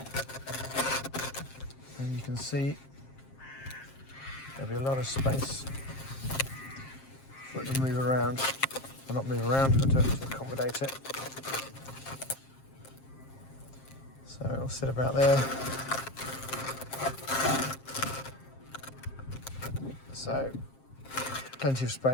you can see there'll be a lot of space for it to move around. Well, not move around, but to accommodate it. So it'll sit about there. So plenty of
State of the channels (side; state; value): right; late; 7.5 ms